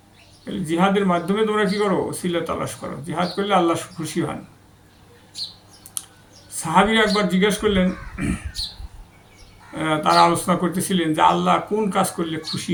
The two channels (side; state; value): both; identical; correlation 1.00